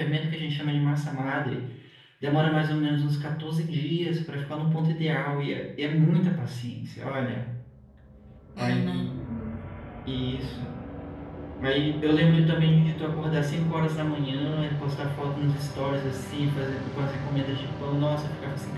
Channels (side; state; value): both; identical; correlation 1.00